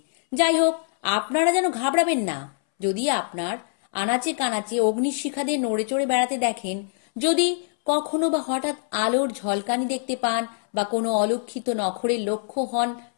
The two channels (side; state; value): right; silent; 62 dB below the other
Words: যাই হোক, আপনারা যেন ঘাবড়াবেন না। যদি আপনার আনাচে কানাচে অগ্নিশিখাদের নড়ে চড়ে বেড়াতে দেখেন, যদি কখনো বা হঠাৎ আলোর ঝলকানি দেখতে পান বা কোনো অলক্ষিত নখরের লক্ষ্য হন,